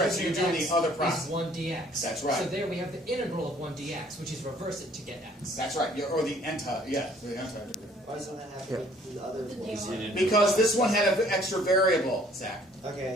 So you're doing X the other is process. 1 dx. That's right. So there we have the integral of 1 dx, which is reverse it to get x. That's right. Or the anti, yeah, the anti-derivative. Why doesn't that happen with the other ones? Because this one had an extra variable, Zach.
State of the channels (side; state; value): both; normal; correlation 0.58